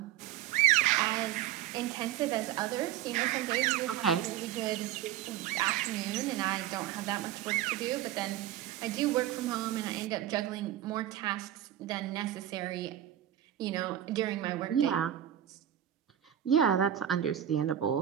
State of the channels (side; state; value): left; quieter; 11.6 dB